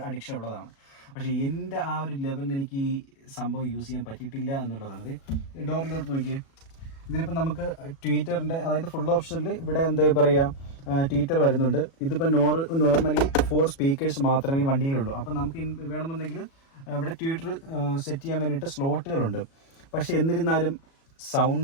അഡിക്ഷൻ ഉള്ളതാണ്. പക്ഷേ എൻ്റെ ആ ഒരു ലെവലിൽ എനിക്ക് ഈ സംഭവം യൂസ് ചെയ്യാൻ പറ്റിയിട്ടില്ല എന്നുള്ളതാണ്. അത് ഡോറിലോട്ട് നോക്കിയേ, ഇതിനിപ്പോൾ നമുക്ക് ട്വീറ്ററിൻ്റെ അതായത് ഫുൾ ഓപ്ഷനിൽ ഇവിടെ എന്താ പറയുക ട്വീറ്റർ വരുന്നുണ്ട്. ഇതിപ്പോൾ നോർമലി 4 സ്പീക്കേഴ്സ് മാത്രമേ ഈ വണ്ടിയിലുള്ളൂ. അപ്പം നമുക്ക് വേണമെന്നുണ്ടെങ്കിൽ ഇവിടെ ട്വീറ്റർ സെറ്റ് ചെയ്യാൻ വേണ്ടിയിട്ട് സ്ലോട്ടുകളുണ്ട്. പക്ഷെ എന്നിരുന്നാലും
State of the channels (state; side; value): late; right; 36 ms